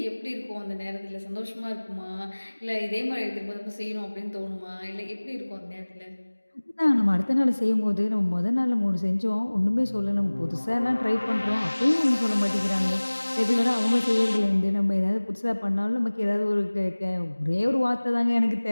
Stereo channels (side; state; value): both; inverted; correlation -1.00